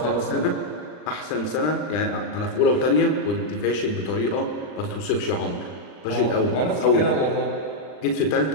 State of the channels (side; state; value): right; late; 39 ms